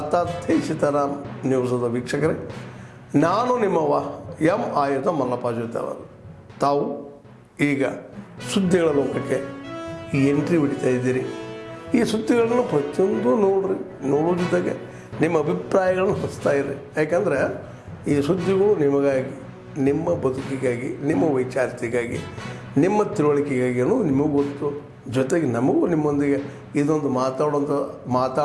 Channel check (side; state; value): both; identical; correlation 1.00